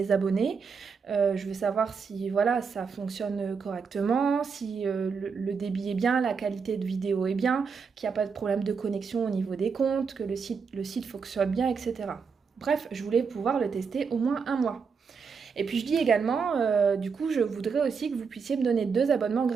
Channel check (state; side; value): quieter; left; 5.7 dB